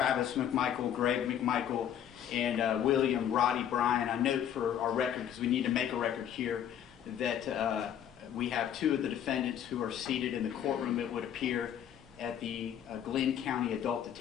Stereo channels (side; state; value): right; quieter; 9.7 dB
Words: McMichael, Greg McMichael, and William Roddy Bryan. I note for our record, because we need to make a record here, that we have two of the defendants who are seated in the courtroom, it would appear, at the Glenn County Adult